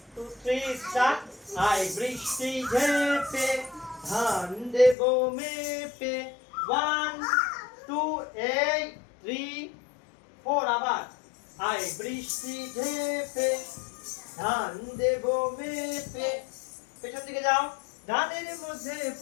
2 3 স্টার্ট। আই বৃষ্টি ঝেপে ধান দেব মেপে, 1 2 এই 3 4 আবার। আই বৃষ্টি ঝেপে ধান দেব মেপে, পেছন দিকে যাও। ধানের মধ্যে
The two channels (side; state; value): right; drops out; at 5.0 s